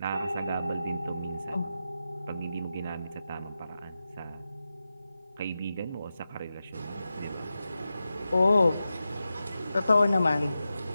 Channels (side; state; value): both; inverted; correlation -0.91